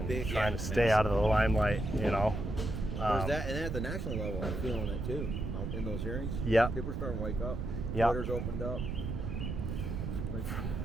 trying to stay out of the limelight, you know. There's that, and then at the national level, I'm feeling it too. In those hearings, yeah, people are starting to wake up. Yeah, Twitter's opened up.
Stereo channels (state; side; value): noise; right; rumble, 3 dB below the sound